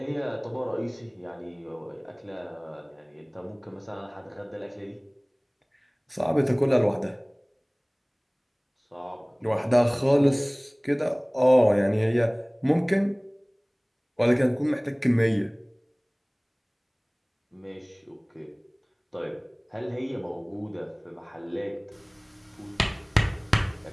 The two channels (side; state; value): both; identical; correlation 1.00